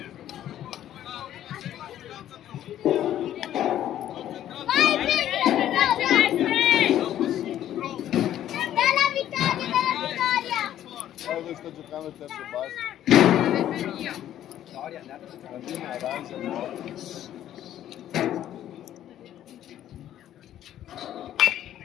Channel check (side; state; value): right; quieter; 11.8 dB